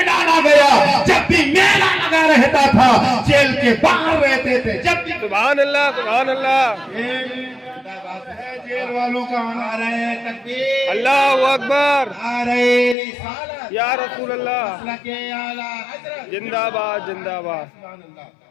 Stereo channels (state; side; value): drops out; right; at 13.0 s